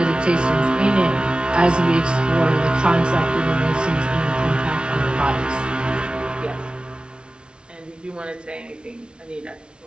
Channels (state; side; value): late; left; 0.056 ms